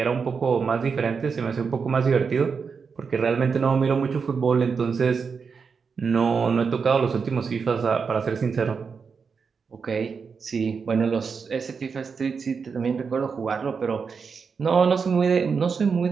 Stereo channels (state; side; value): quieter; left; 5.6 dB